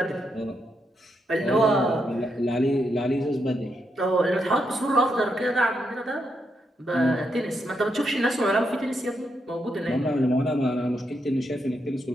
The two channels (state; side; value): normal; both; correlation 0.81